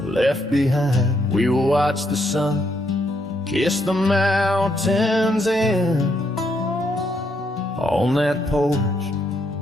behind. We will watch the sun kiss the mountains in. On that porch,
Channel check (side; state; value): both; normal; correlation 0.75